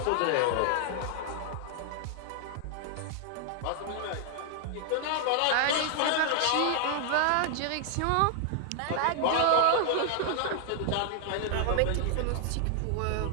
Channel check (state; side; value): different; both; correlation 0.00